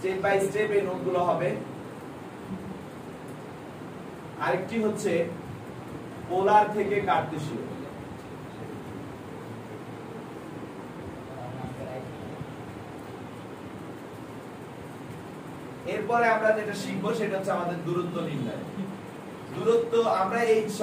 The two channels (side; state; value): both; identical; correlation 1.00